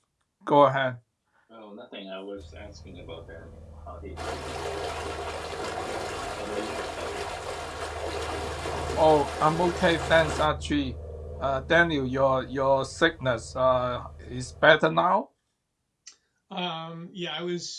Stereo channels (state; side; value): identical; both; correlation 1.00